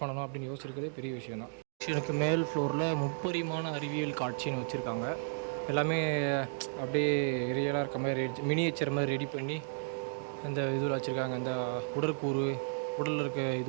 பண்ணணும் அப்படின்னு யோசிச்சிருக்கிறதே பெரிய விஷயந்தான். எனக்கு மேல் ஃப்ளோரில் முப்பரிமாண அறிவியல் காட்சின்னு வச்சுருக்காங்க. எல்லாமே அப்படியே ரியலாக இருக்க மாதிரி மினியேச்சர் மாதிரி ரெடி பண்ணி இந்த இதில் வச்சுருக்காங்க. இந்த உடற்கூறு, உடலில் இருக்க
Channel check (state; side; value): silent; left; digital silence